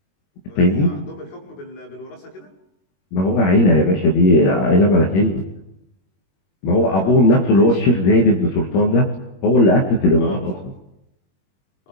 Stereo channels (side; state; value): right; late; 21 ms